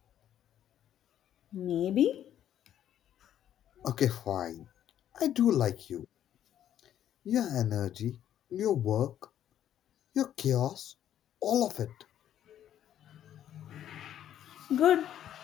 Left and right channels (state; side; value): quieter; right; 10.8 dB